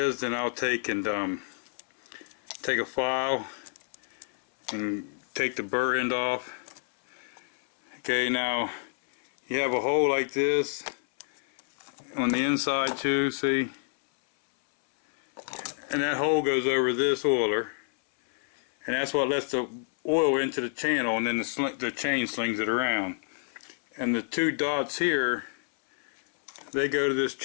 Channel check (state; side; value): silent; right; 59 dB below the other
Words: then I'll take and take a file and take the burr end off. Okay, now you have a hole like this on the inside too, see? And that hole goes over this oiler, and that's what lets the oil into the channel, and then the chain slings it around. And the two dots here, they go to this